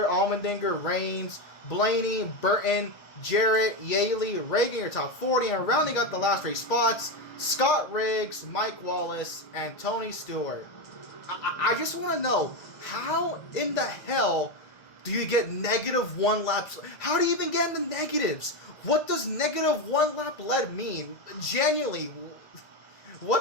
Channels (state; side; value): late; right; 2.0 ms